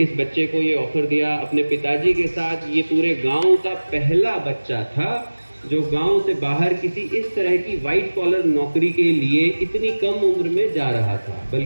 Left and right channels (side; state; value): both; inverted; correlation -1.00